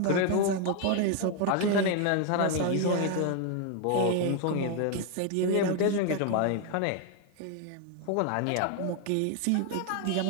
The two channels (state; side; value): different; both; correlation 0.00